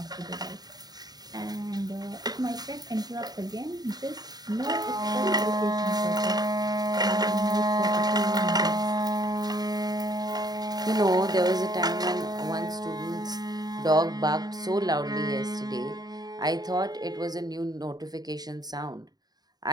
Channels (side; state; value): left; late; 0.19 ms